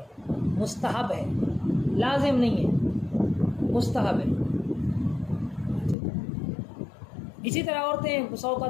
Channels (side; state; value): right; drops out; at 6.0 s